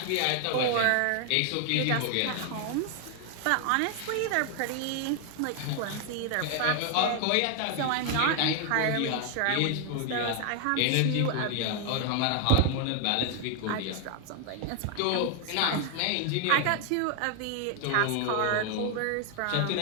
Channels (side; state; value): both; different; correlation 0.00